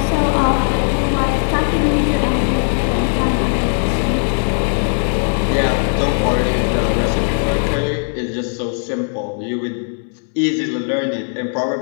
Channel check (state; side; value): silent; right; 67 dB below the other